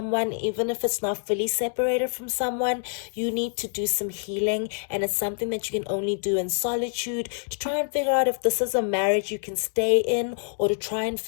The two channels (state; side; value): silent; right; digital silence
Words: even if it's not fully separated from someone. You need to do some healing, and it's something that you can only do in solitude to try and figure out if this is a marriage you can stay in, or to try and